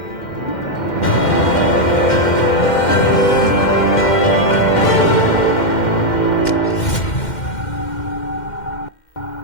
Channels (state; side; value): late; right; 2.1 ms